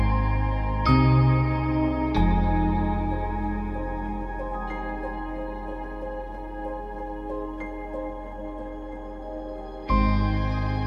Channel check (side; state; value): both; identical; correlation 1.00